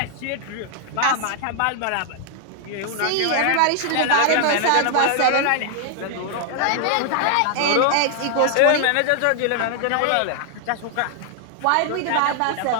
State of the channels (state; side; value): different; both; correlation 0.00